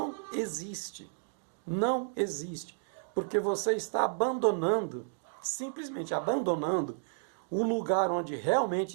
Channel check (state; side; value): silent; left; digital silence